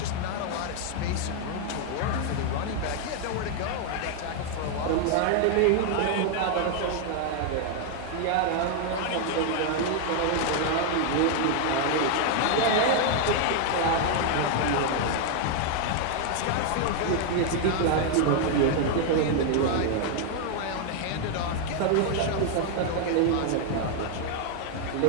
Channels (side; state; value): both; different; correlation 0.00